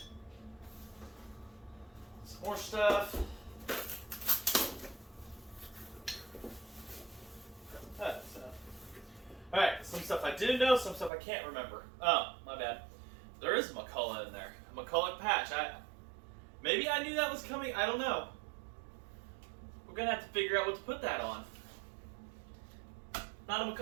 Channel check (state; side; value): drops out; left; at 11.1 s